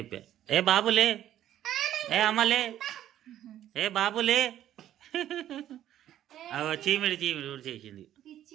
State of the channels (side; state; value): left; quieter; 12.0 dB